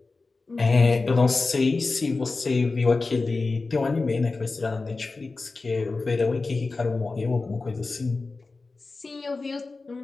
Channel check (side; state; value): right; quieter; 3.8 dB